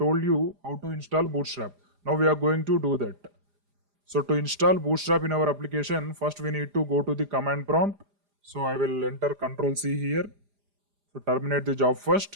you how to install Bootstrap. Now we are going to do that. So to install Bootstrap in our application, first we need to go to the command prompt. So I will enter Ctrl C here. So terminate the job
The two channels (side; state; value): left; late; 4.9 ms